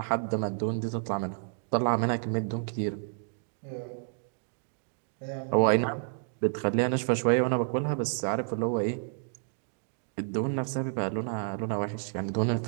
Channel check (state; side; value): silent; left; digital silence